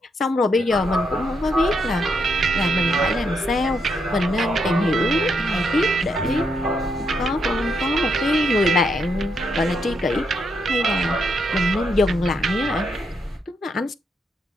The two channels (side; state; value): both; normal; correlation 0.79